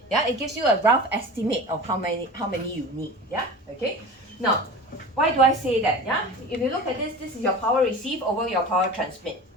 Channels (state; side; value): normal; both; correlation 0.34